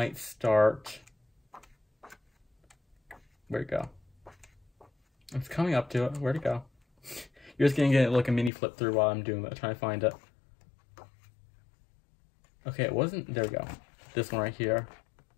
start. Where'd it go? It's coming up to it. Where'd it go? You're just gonna get like a mini flip through while I'm doing that, trying to find it. Okay, it wasn't. There we go. This one right here,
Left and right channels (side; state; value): right; drops out; at 8.5 s